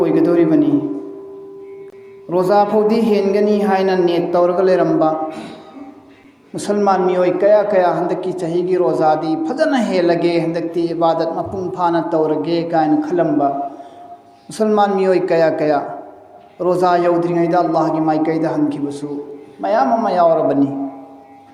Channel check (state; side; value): identical; both; correlation 1.00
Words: ओइगदोरिबनी। रोजा फौदी हेनगनी हाइना नेट तौरग लेरंबा मुसलमान मियोय कया कया हंदकी चहीगी रोजादी फजना हेलगे हंदकती इबादत मपुंग फाना तौरगे कायन खलंबा मुसलमान मियोय कया कया रोजा यौद्रिङैदा अल्लाह की माइकैदा हनखिबसु मयाम अमा यावरबनी।